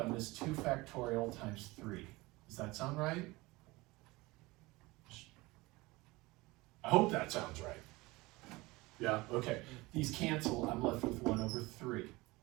is 2 factorial times 3. Does that sound right? I hope that sounds right. Yeah, okay. These cancel, I'm left with 1 over 3.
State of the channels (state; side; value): quieter; left; 21.9 dB